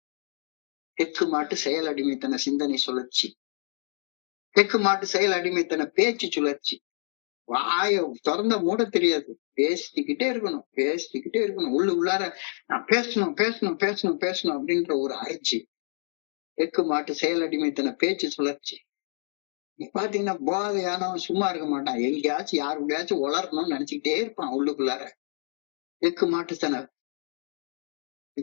தெற்கு மாட்டு செயல் அடிமைத்தன சிந்தனை சுழற்சி. தெற்கு மாட்டு செயல் அடிமைத்தன பேச்சு சுழற்சி. வாய திறந்த மூட தெரியாது, பேசிக்கிட்டே இருக்கணும். உள்ளார நான் பேசணும் அப்படின்ற ஒரு அரைச்சி. தெற்கு மாட்டு செயல் அடிமைத்தன பேச்சு சுழற்சி. நீ பாத்தீங்கன்னா போதையானவன் சும்மா இருக்க மாட்டான், எங்கேயாச்சும் யாருடையாச்சும் வளரணும்னு நினைச்சுக்கிட்டே இருப்பான் உள்ளுக்குள்ளார. தெற்கு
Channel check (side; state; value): right; silent; digital silence